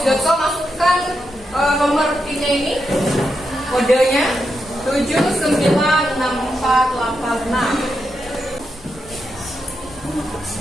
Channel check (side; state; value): both; normal; correlation 0.85